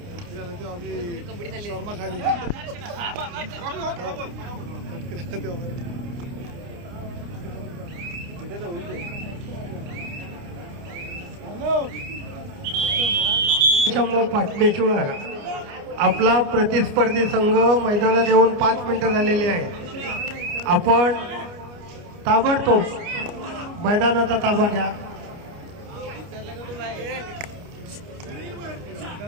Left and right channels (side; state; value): left; late; 29 ms